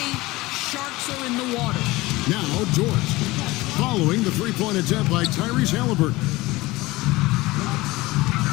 sharks are in the water. Now, Dort, following the three-point attempt by Tyrese Halliburton.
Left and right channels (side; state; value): right; quieter; 20.3 dB